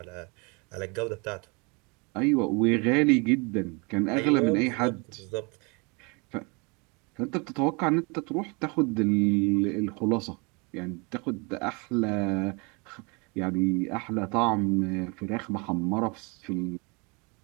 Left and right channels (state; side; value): quieter; left; 30.2 dB